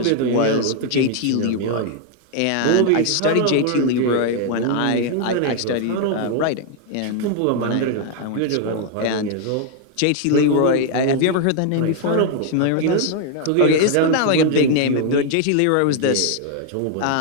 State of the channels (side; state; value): both; different; correlation 0.00